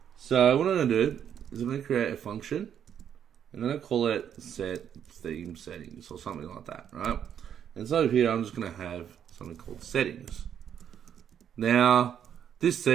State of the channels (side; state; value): left; quieter; 9.0 dB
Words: so what I'm going to do is I'm going to create a function. I'm going to call it set theme settings or something like that, right? And so here I'm just going to have something called settings. Now this